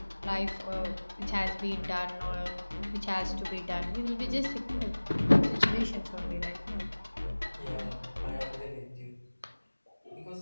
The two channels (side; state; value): both; inverted; correlation -1.00